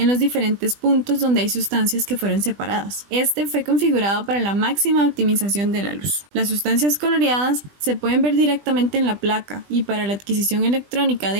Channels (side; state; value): left; late; 20 ms